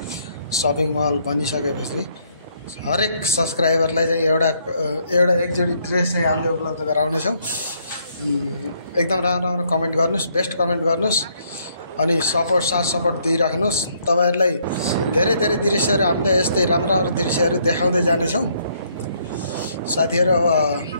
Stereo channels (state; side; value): inverted; both; correlation -0.69